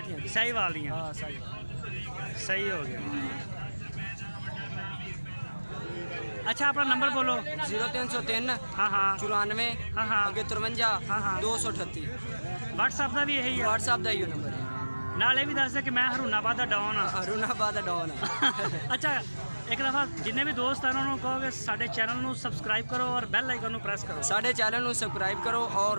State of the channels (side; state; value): both; inverted; correlation -1.00